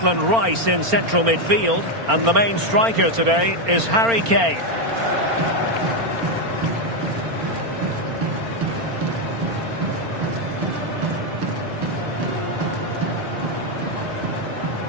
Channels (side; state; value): left; late; 4.4 ms